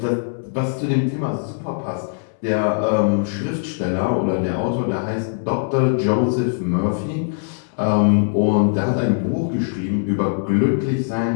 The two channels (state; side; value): silent; right; 64 dB below the other